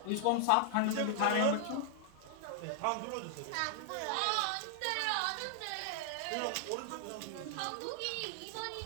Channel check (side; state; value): both; different; correlation -0.01